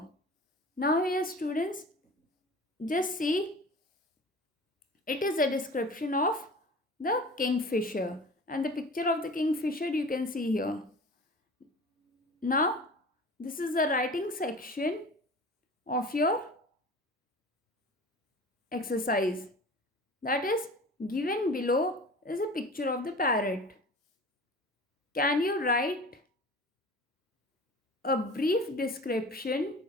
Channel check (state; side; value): normal; both; correlation 0.39